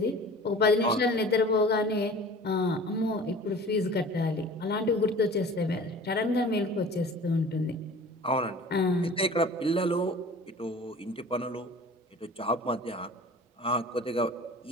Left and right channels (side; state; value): both; normal; correlation 0.42